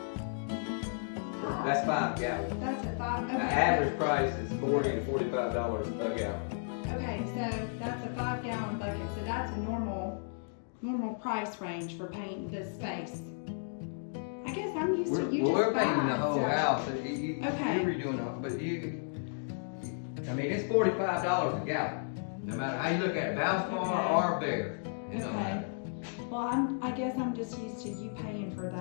That's 5 gallons. That's a 5. The Okay. average price is $40 to $45 a gallon. Okay, so that's a 5-gallon bucket. So that's a normal price range for painting this space. I guess I'm used to you just We're painting buying the whole stuff. house. Okay. You're redoing it, but I mean, it's $45 a gallon. No matter how you look at it, Valspar or Bear. It don't Okay. matter. Well, I guess I'm just used to you paying for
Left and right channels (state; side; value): silent; right; digital silence